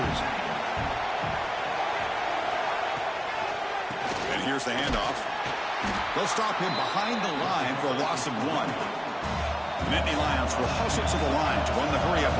And here's the handoff. They'll stop him behind the line for a loss of 1. The Nittany Lions will hustle to the line to run the hurry-up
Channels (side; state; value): both; identical; correlation 1.00